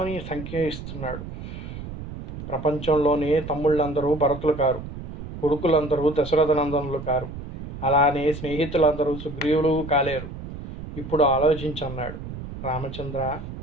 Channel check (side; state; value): right; noise; rumble, 10 dB below the sound